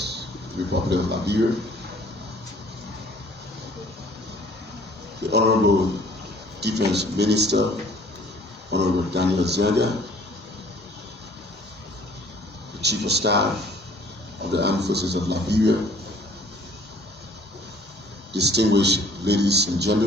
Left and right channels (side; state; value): both; normal; correlation 0.55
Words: Republic of Liberia. The Honorable Defense Minister, Honorable Daniel Zenda, the Chief of Staff of the Armed Forces of Liberia, distinguished ladies and